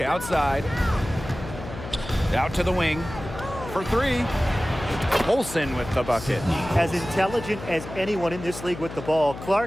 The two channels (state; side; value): noise; left; hum, 11 dB below the sound